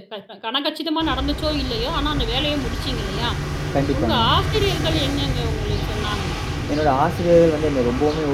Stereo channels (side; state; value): both; identical; correlation 1.00